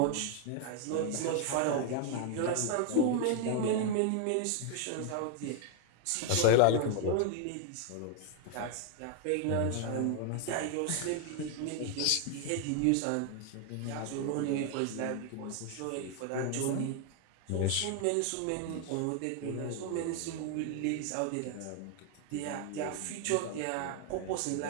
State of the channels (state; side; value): different; both; correlation 0.00